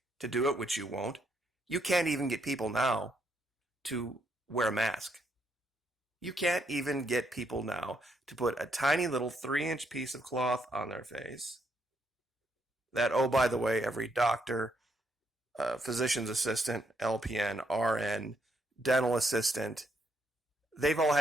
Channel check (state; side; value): normal; both; correlation 0.75